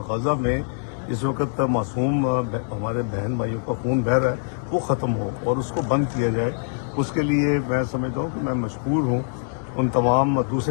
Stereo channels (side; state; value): right; silent; digital silence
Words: غزہ میں اس وقت معصوم ہمارے بہن بھائیوں کا خون بہہ رہا ہے وہ ختم ہو اور اس کو بند کیا جائے. اس کے لیے میں سمجھتا ہوں کہ میں مشکور ہوں ان تمام